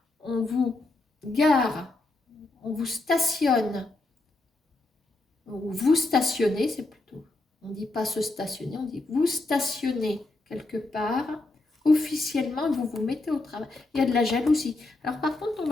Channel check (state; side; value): quieter; right; 3.0 dB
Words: on vous gare, on vous stationne, ou vous stationnez, c'est plutôt, on ne dit pas se stationner, on dit vous stationnez quelque part, officiellement, vous vous mettez au travail. Il y a de la jalousie. Alors par contre, on